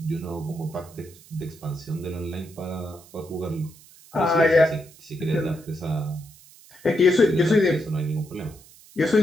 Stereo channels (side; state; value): right; noise; hiss, 23 dB below the sound